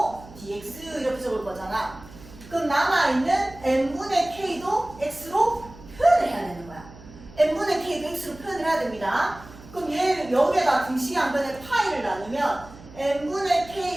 dx 이렇게 적을 거잖아. 그럼 남아있는 n분의 k도 x로 표현을 해야 되는 거야. n분의 k도 x로 표현을 해야 됩니다. 그럼 얘 여기에다 등식의 양변에 파이를 나누면 n분의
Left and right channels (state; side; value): noise; right; hum, 19 dB below the sound